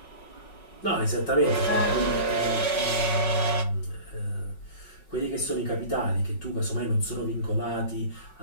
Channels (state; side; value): late; right; 5.4 ms